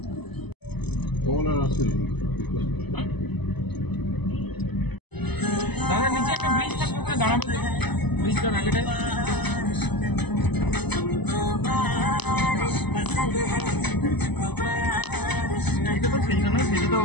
কমলা রাস্তা দাঁড়াবে তো ব্রিজটার আগেটায়। এটা তো সেইটা নয়, সেটা তো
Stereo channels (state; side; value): late; right; 0.99 ms